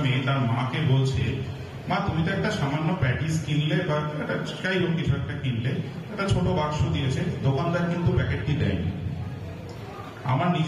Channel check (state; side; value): identical; both; correlation 1.00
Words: মেয়ে তার মাকে বলছে, মা তুমি তো একটা সামান্য প্যাটিস কিনলে বা একটা যাই হোক কিছু একটা কিনলে, একটা ছোট বাক্স দিয়েছে, দোকানদার কিন্তু প্যাকেটটি দেয়নি। আমার